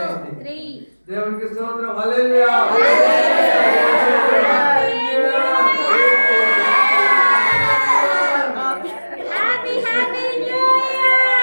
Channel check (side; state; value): both; inverted; correlation -1.00